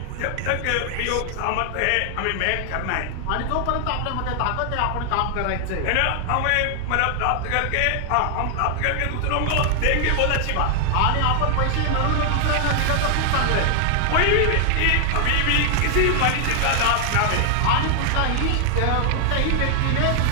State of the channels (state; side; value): different; both; correlation 0.00